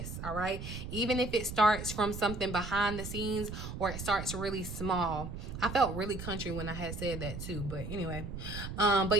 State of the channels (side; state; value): right; noise; rumble, 7 dB below the sound